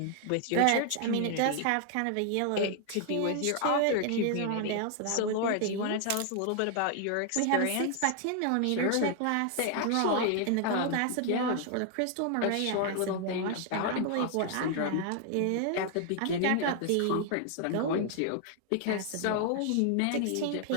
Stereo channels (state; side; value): different; both; correlation 0.00